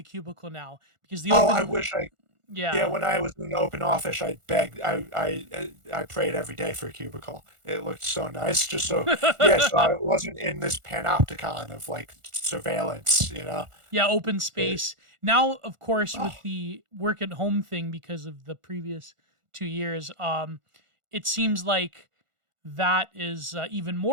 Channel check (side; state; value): left; late; 1.4 ms